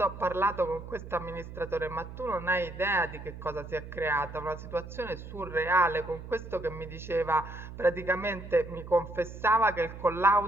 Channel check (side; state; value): right; noise; hum, 12 dB below the sound